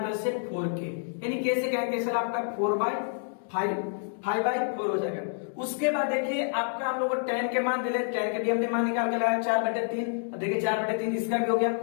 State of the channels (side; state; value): right; silent; digital silence